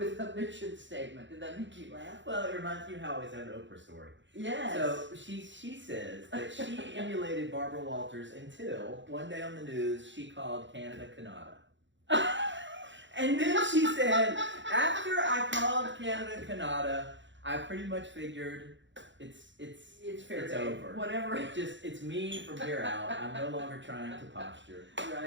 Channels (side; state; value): left; late; 0.54 ms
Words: a mission statement. Did that make you laugh? Well, it reminds me how I always have an Oprah story. Yes. So she says that she emulated Barbara Walters until one day on the news she called Canada Canada. And then she said, after I called Canada Canada, I pretty much figured it's fair it's game. over. Whatever. It's me from here out. I'm no longer trying to posture.